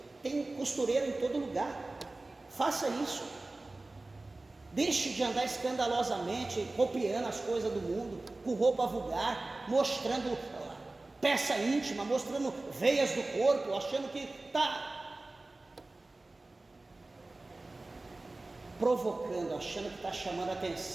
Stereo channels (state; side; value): quieter; left; 3.0 dB